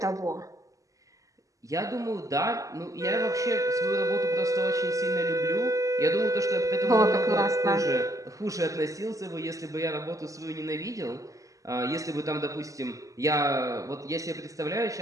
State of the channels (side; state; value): left; late; 0.16 ms